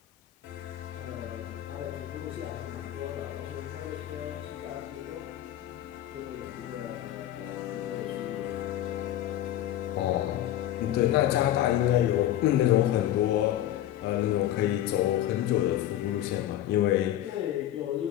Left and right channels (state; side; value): quieter; right; 12.7 dB